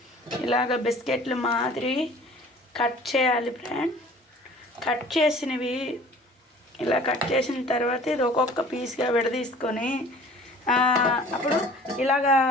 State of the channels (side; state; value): both; normal; correlation 0.48